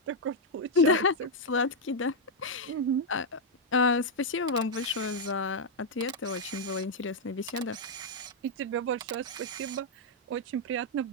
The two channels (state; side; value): normal; both; correlation -0.02